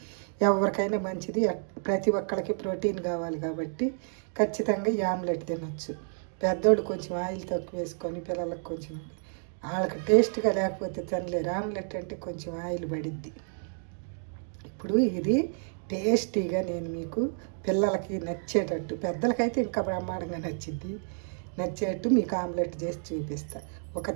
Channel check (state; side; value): silent; left; 58 dB below the other